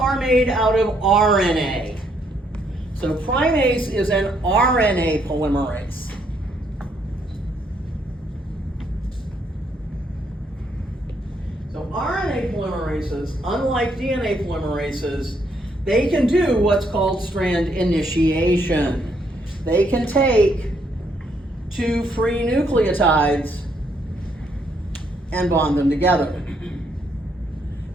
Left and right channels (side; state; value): both; normal; correlation 0.72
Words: made out of RNA. So primase is an RNA polymerase. So RNA polymerases, unlike DNA polymerases, they can do what's called strand initiation. They can take 2 free nucleotides and bond them together.